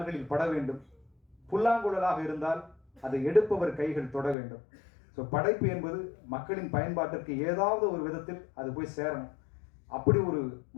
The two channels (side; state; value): right; drops out; at 4.4 s